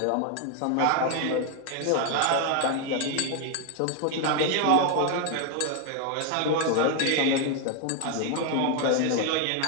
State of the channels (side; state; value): both; different; correlation 0.01